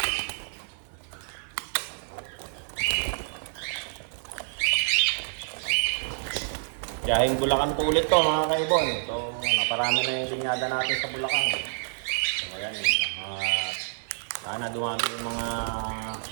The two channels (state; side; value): silent; left; digital silence